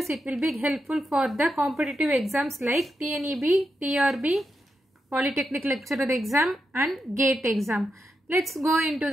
It will be helpful for the competitive exams like TNEB, TRB, Polytechnic Lecturer exam and GATE exam. Let's go into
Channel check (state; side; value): normal; both; correlation 0.86